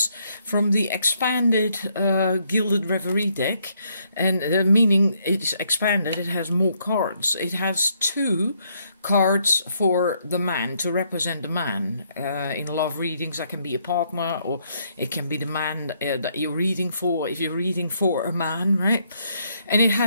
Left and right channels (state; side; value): inverted; both; correlation -0.72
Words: from the expanded Gilded Reverie deck, and meaning it's expanded, it has more cards. It has 2 cards for the man, to represent the man. In love readings, that can be a partner, or it can be the man that you're reading for, if you're reading for a man, right? And it